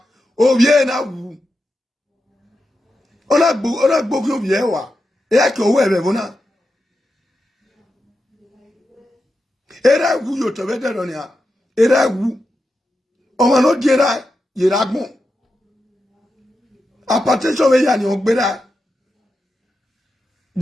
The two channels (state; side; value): normal; both; correlation 0.89